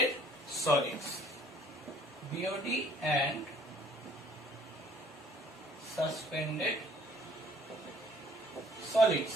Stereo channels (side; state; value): both; normal; correlation 0.57